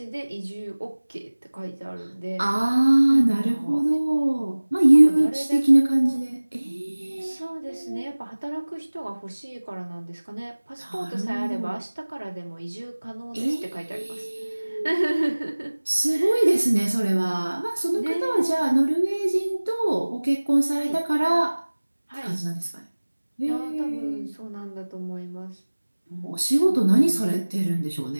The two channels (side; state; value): both; inverted; correlation -1.00